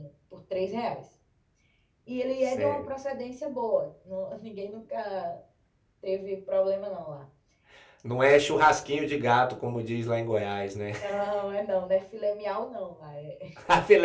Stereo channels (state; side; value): identical; both; correlation 1.00